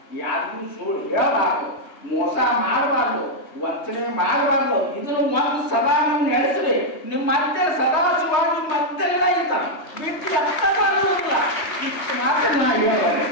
ಯಾರಿಗೂ ಸುಳ್ಳು ಹೇಳಬಾರ್ದು, ಮೋಸ ಮಾಡಬಾರ್ದು, ವಂಚನೆ ಮಾಡಬಾರ್ದು. ಇದನ್ನು ಒಂದು ಸದಾ ನೀವು ನಡೆಸ್ರಿ. ನಿಮ್ಮ ಮತ್ತೆ ಸದಾ ಶಿವಾಗಿ ಮತ್ತೆಲ್ಲ ಇರ್ತಾನೆ ಬಿಟ್ಟು ಎತ್ತಲ್ಲ. ಇಷ್ಟು ಮಾತ್ರ ನಾ ಹೇಳೋದೆ.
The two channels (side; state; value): right; late; 3.2 ms